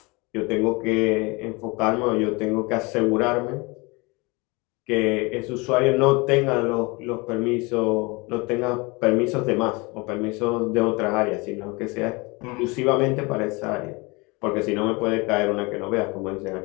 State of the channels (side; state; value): right; quieter; 26.5 dB